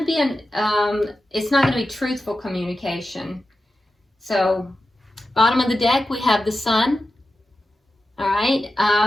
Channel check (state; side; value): normal; both; correlation 0.92